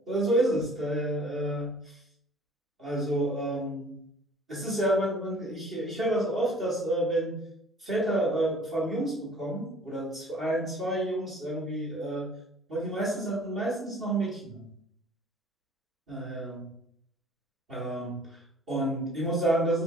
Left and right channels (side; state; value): both; normal; correlation 0.51